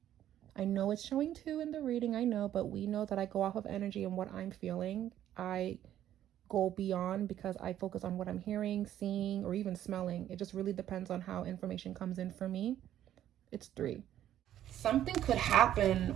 I know it's showing 2 in the reading, I know, but we know that I go off of energy and what I'm feeling. I go beyond because I focus on what I'm hearing, seeing, or even smelling. It just really depends on how information comes in for me. It's 3. Something could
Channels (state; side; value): quieter; left; 11.6 dB